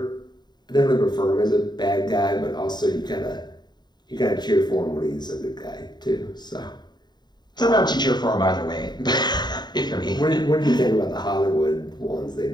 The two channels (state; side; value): late; right; 0.21 ms